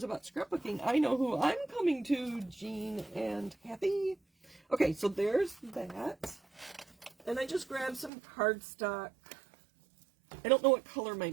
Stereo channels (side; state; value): left; drops out; at 8.1 s